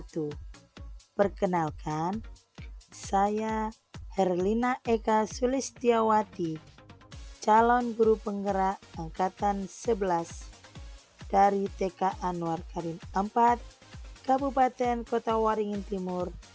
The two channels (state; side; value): identical; both; correlation 1.00